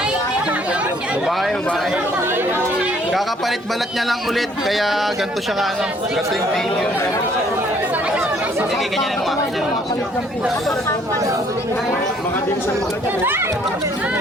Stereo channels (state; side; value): normal; both; correlation 0.62